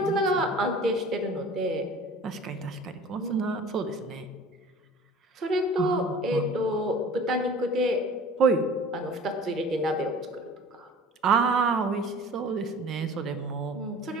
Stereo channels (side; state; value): both; normal; correlation 0.44